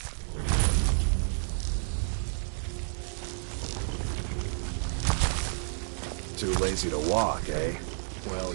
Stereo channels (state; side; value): silent; left; digital silence